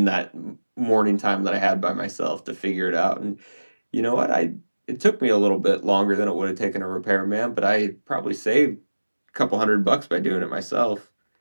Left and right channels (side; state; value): both; inverted; correlation -1.00